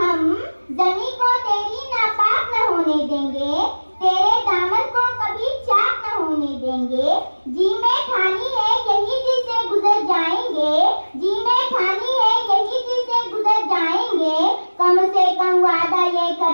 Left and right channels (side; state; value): both; inverted; correlation -1.00